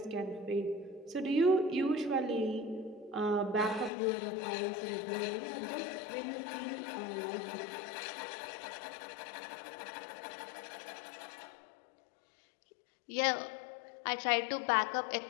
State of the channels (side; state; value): right; drops out; at 3.9 s